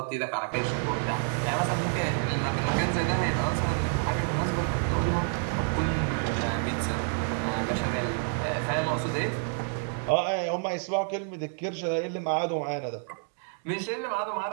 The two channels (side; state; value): left; silent; 59 dB below the other